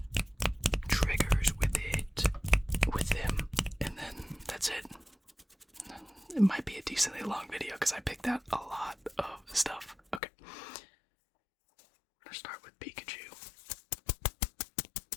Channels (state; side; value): drops out; right; at 10.2 s